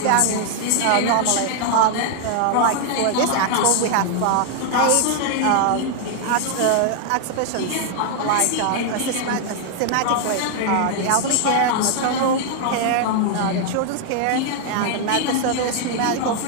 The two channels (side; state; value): both; different; correlation 0.00